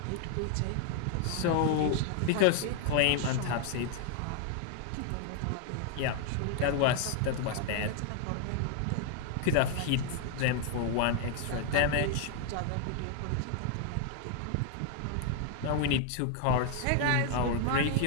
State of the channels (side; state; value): both; different; correlation 0.00